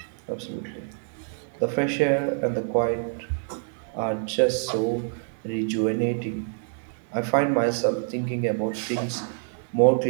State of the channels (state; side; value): silent; left; 61 dB below the other